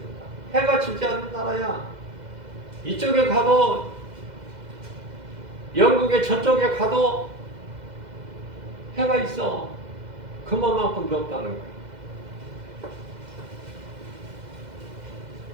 해가 지지 않는 나라야. 이쪽에 가도 영국의 저쪽에 가도 해가 있어. 그만큼 높다는 거야.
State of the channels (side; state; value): left; late; 2.0 ms